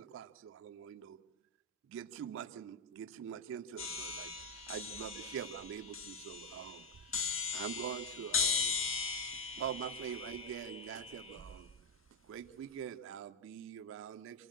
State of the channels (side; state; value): both; normal; correlation 0.03